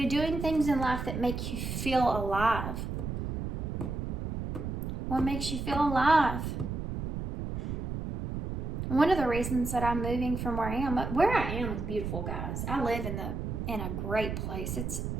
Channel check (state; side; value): noise; right; rumble, 4 dB below the sound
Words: doing things in life that make you feel alive? What makes you feel alive? One of the reasons that I'm moving from where I am is beautiful, guys. I live in a great place. It's